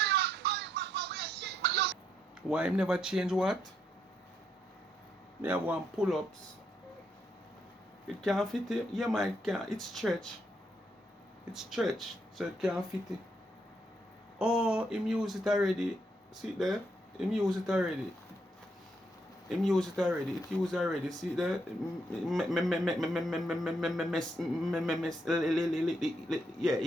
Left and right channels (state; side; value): normal; both; correlation 0.76